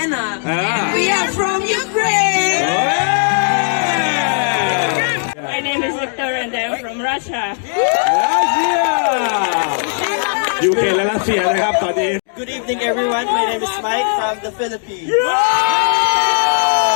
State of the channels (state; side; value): silent; right; 64 dB below the other